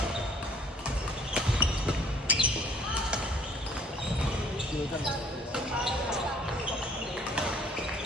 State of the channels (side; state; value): both; normal; correlation 0.57